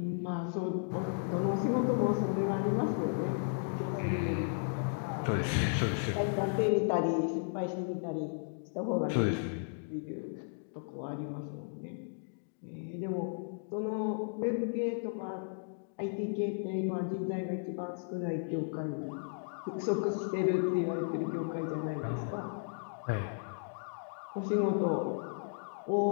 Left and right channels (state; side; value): silent; right; digital silence